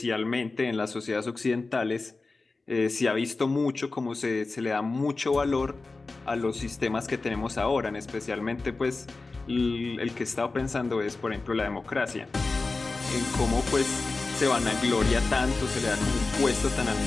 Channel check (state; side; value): quieter; right; 3.7 dB